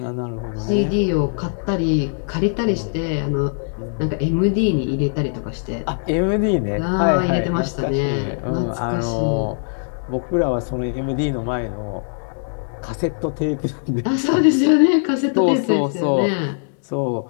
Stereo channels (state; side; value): silent; right; digital silence